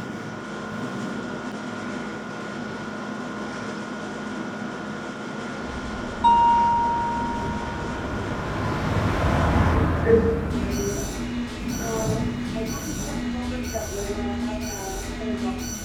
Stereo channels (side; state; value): both; identical; correlation 1.00